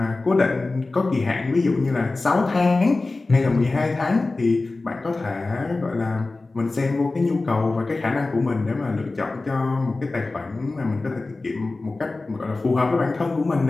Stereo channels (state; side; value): quieter; right; 3.4 dB